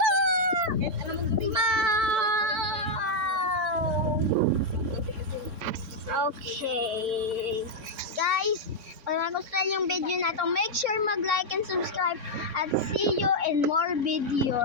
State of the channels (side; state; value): left; late; 3.6 ms